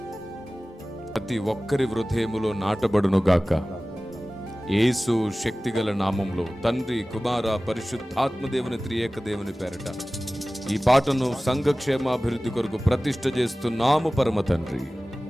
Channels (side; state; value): both; normal; correlation 0.97